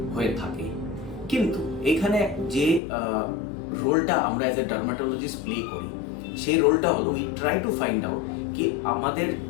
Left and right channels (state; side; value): drops out; right; at 2.8 s